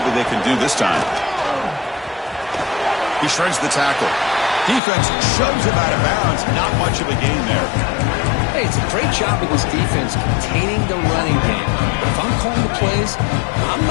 they can do this time. He shreds the tackle. Defense shoves him out of bounds. Not much of a gain there. Hey, it's a great job of this defense containing the running game. But if I'm calling the plays, I'm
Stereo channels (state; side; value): drops out; right; at 4.8 s